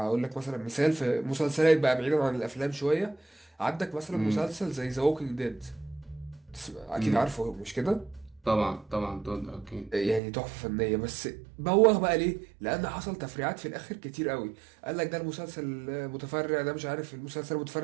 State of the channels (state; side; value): drops out; left; at 10.2 s